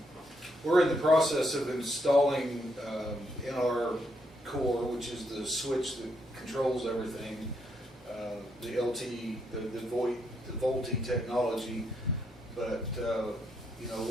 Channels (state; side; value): normal; both; correlation 0.77